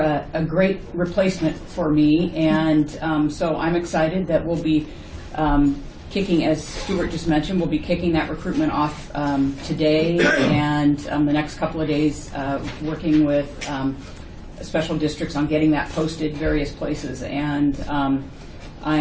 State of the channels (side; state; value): both; identical; correlation 1.00